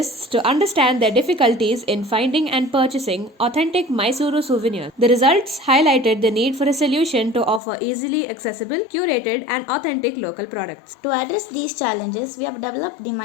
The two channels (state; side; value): drops out; right; at 7.6 s